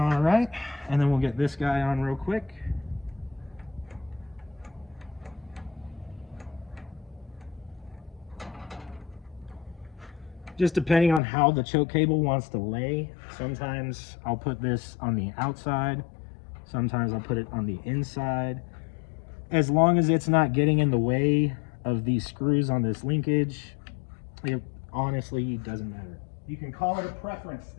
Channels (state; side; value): drops out; right; at 11.2 s